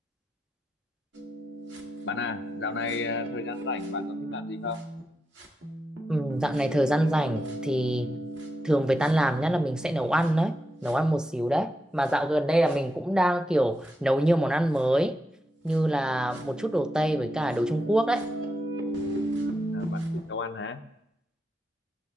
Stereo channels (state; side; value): normal; both; correlation 0.86